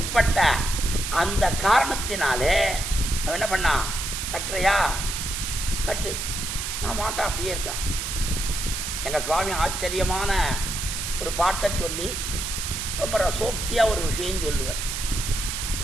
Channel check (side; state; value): right; noise; hiss, 4 dB below the sound